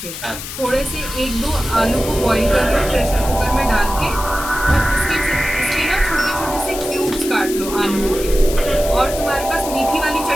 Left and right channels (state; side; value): noise; left; hiss, 9 dB below the sound